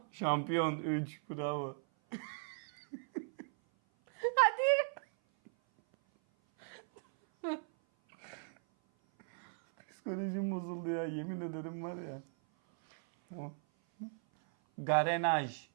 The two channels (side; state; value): left; silent; 53 dB below the other